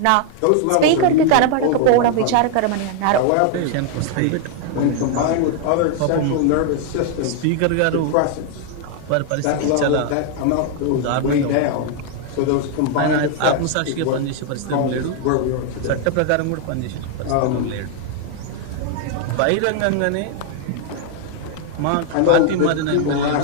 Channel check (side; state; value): both; different; correlation 0.00